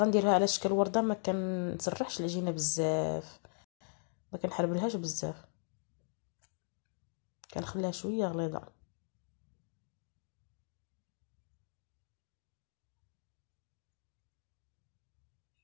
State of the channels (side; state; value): right; silent; digital silence